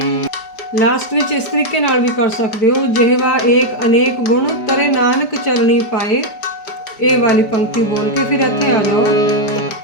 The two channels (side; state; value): right; late; 5.0 ms